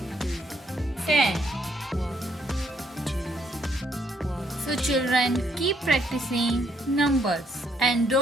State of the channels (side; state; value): both; normal; correlation 0.71